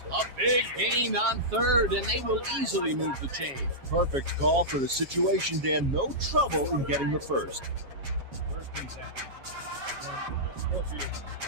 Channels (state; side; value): late; left; 7.3 ms